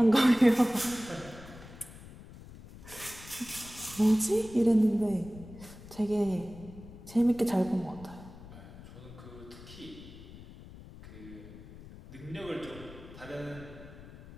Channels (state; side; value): noise; left; rumble, 17 dB below the sound